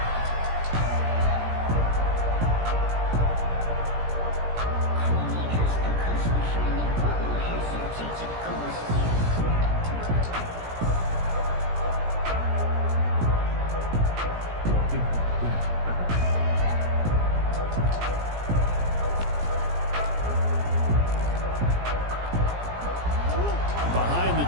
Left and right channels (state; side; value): late; left; 17 ms